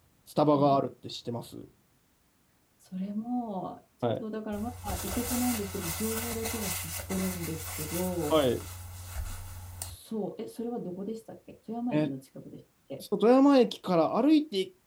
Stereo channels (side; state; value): both; identical; correlation 1.00